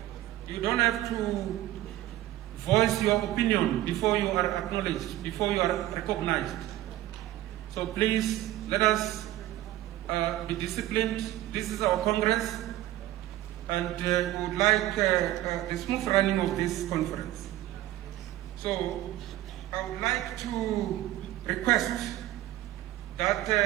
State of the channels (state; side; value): quieter; left; 14.8 dB